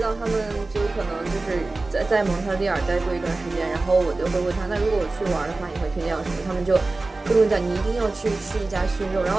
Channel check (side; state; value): left; quieter; 3.3 dB